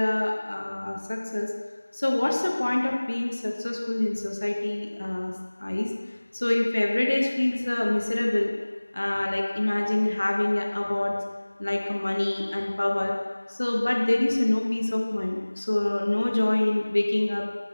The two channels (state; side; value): inverted; both; correlation -1.00